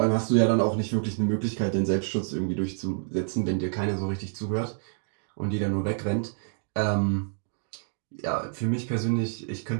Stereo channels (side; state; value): left; silent; digital silence